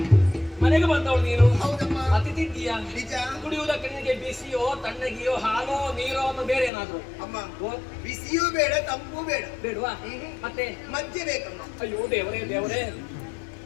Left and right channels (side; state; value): right; drops out; at 6.7 s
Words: ಮನೆಗೆ ಬಂದವಳು ನೀನು. ಹೌದಮ್ಮ. ಅತಿಥಿ ಇದ್ದೀಯಾ? ನಿಜ. ಕುಡಿಯುವುದಕ್ಕೆ ನಿನಗೆ ಬಿಸಿಯೋ ತಣ್ಣಗಿಯೋ ಹಾಲೋ ನೀರೋ ಅನ್ನೋ ಬೇರೆ ಏನಾದ್ರು ಅಮ್ಮ, ಬಿಸಿಯೂ ಬೇಡ, ತಂಪು ಬೇಡ. ಬೇಡವಾ? ಮತ್ತೆ ಮಧ್ಯೆ ಬೇಕಮ್ಮ. ಅಯ್ಯೋ ದೇವರೇ ದೇವರೇ,